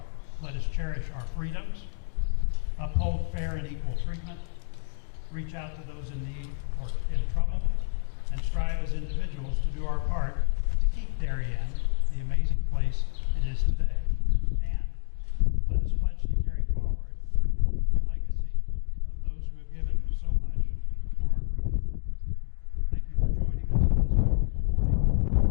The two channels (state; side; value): silent; right; 59 dB below the other